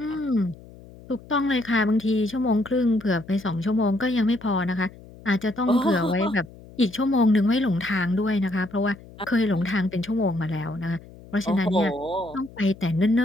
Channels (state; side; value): noise; left; hum, 20 dB below the sound